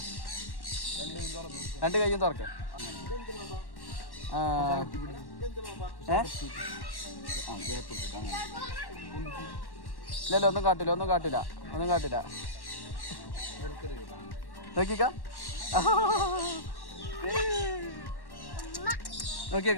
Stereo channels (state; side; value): late; right; 1.1 ms